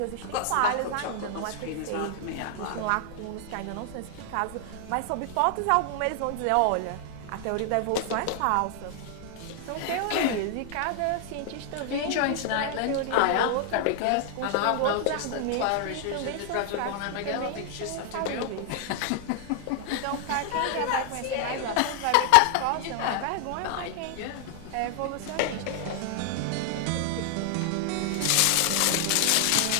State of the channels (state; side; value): different; both; correlation 0.00